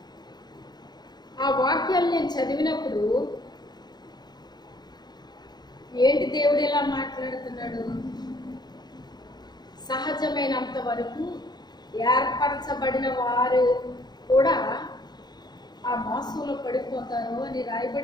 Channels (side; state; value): right; late; 0.20 ms